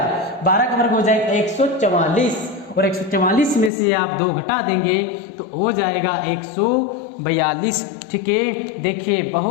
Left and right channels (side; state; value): right; drops out; at 3.7 s